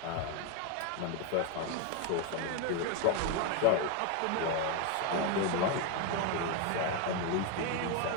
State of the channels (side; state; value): both; different; correlation 0.02